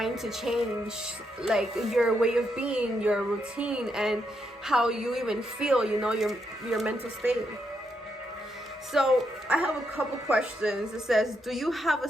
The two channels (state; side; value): normal; both; correlation 0.80